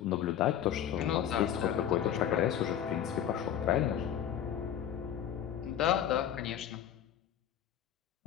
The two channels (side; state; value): right; quieter; 10.0 dB